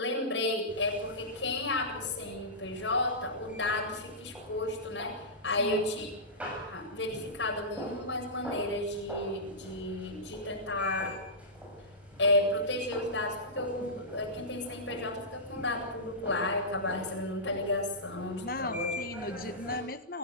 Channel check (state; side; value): normal; both; correlation -0.16